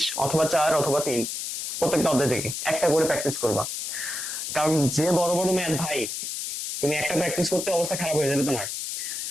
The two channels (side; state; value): left; noise; hiss, 5 dB below the sound